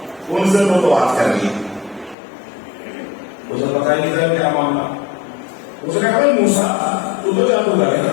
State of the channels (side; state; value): right; drops out; at 2.1 s